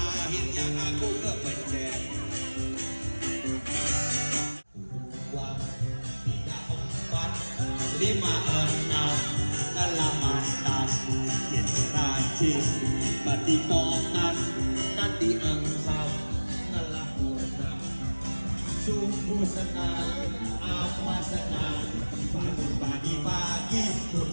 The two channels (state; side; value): inverted; both; correlation -1.00